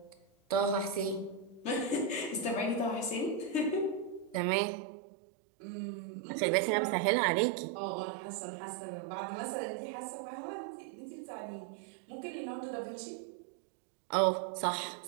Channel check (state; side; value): drops out; left; at 4.4 s